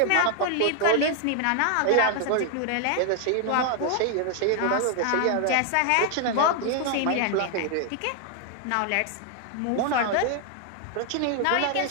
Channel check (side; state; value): both; different; correlation 0.00